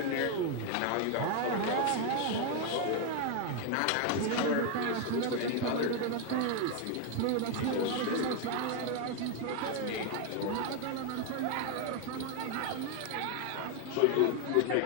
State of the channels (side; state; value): both; different; correlation 0.01